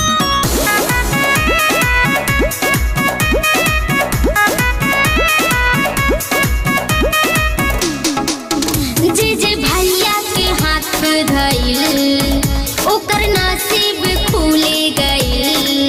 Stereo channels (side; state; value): both; identical; correlation 1.00